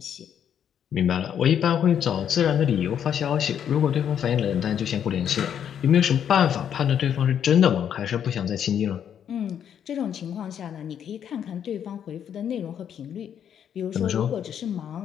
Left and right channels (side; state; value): right; quieter; 8.9 dB